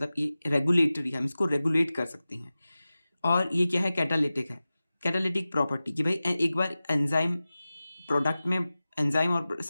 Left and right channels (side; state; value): both; inverted; correlation -0.96